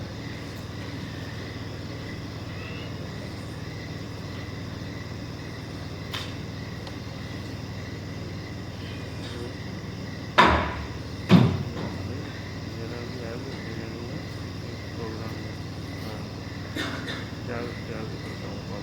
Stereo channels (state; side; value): identical; both; correlation 1.00